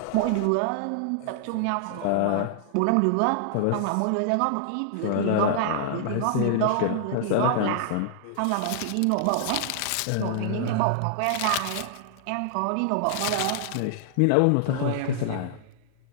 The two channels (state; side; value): different; both; correlation -0.01